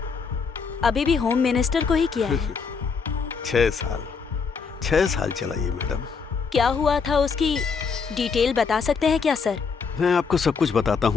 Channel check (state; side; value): quieter; right; 5.5 dB